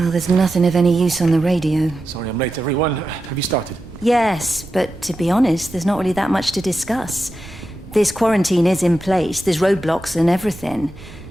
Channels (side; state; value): right; noise; rumble, 18 dB below the sound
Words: there's nothing of any use on the radio. Sorry I'm late, everyone. Have you started? Yes, but to be honest, there's not really that much to discuss. This quarantine is in place, there's roadblocks and everything.